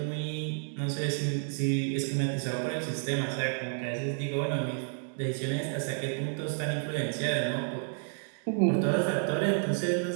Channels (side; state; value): left; silent; 56 dB below the other